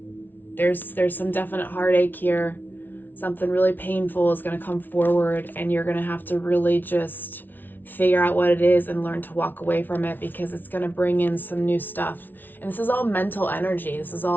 there's some definite heartache here. Something really painful is going to come forward, and you're going to have to really just figure out what it is and learn to walk away from it, because it's going to bring in some new stuff. And this is all mental energy. This is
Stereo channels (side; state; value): right; late; 0.090 ms